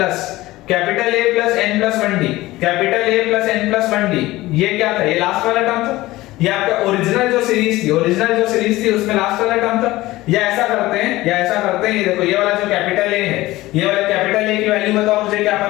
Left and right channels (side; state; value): right; quieter; 18.1 dB